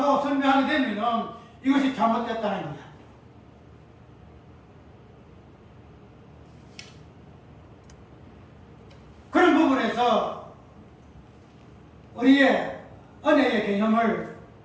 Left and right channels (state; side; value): identical; both; correlation 1.00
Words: 설명하게 되면은 이것이 잘못됐다는 거야. 그런 부분에서 우리의 은혜의 개념을